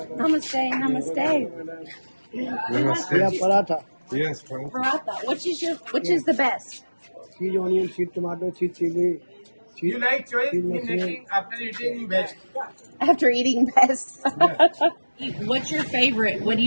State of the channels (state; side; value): inverted; both; correlation -1.00